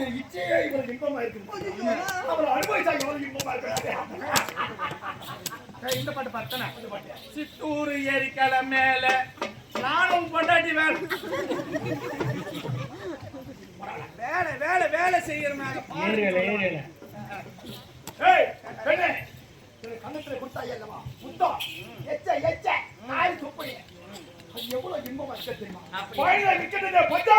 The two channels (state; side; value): identical; both; correlation 1.00